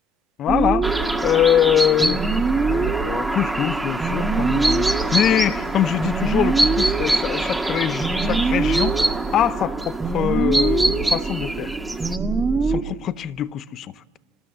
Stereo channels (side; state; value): both; normal; correlation 0.70